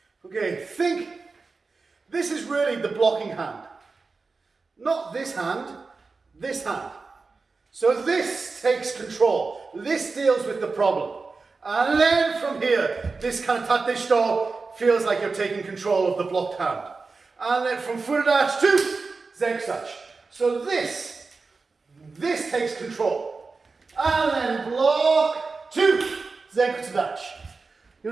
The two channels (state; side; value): quieter; left; 4.2 dB